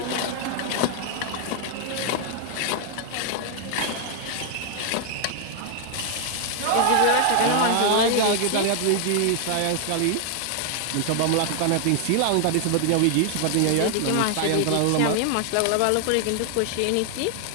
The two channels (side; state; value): both; different; correlation 0.00